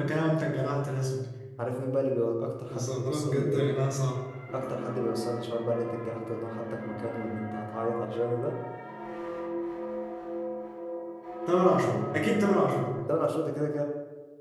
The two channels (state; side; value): identical; both; correlation 1.00